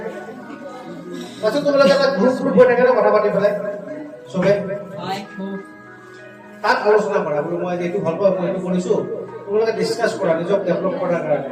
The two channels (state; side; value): identical; both; correlation 1.00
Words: তাৰপিছত তোমালোকে এটা গ্ৰুপ হৈ থাকে ন, কথা পাতি পেলাই চবে তাত আলোচনা কৰা, বোলো মই এইটো ভাল পাওঁ, মই এইটো কৰিছো। তোমালোকে ডিছকাছ কৰা নিজক ডেভেলপ কৰাৰ কাৰণে।